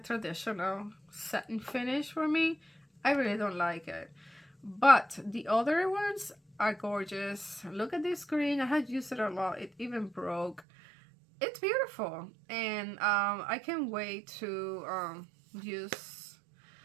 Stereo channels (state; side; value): drops out; left; at 10.6 s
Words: satin finish for me. I really don't like it. But the other ones are gorgeous. Look at this green. I had used it a lot. It even broke. It's beautiful. And I can't wait to use